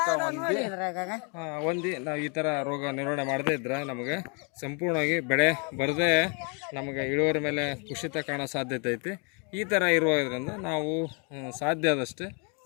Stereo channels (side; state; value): right; quieter; 36.1 dB